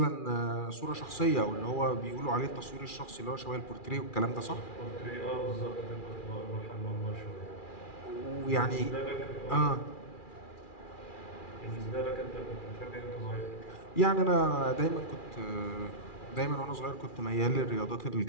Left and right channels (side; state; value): right; late; 2.4 ms